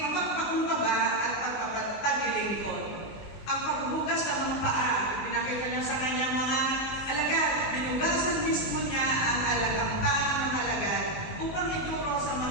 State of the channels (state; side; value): late; right; 20 ms